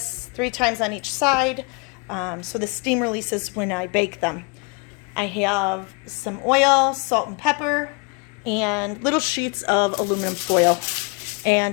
3 times on each side, so the steam releases when I bake them. I have some oil, salt and pepper, and little sheets of aluminum foil.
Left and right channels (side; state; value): right; quieter; 31.7 dB